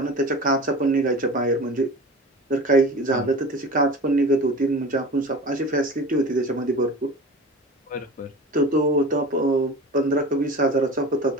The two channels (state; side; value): normal; both; correlation 0.35